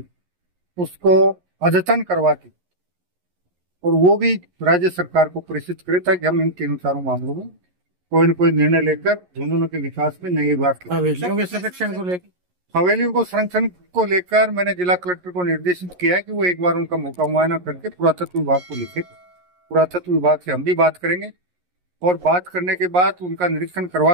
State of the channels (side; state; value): left; late; 11 ms